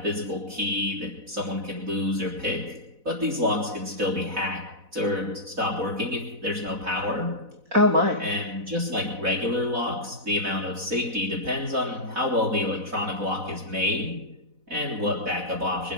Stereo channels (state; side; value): late; left; 4.0 ms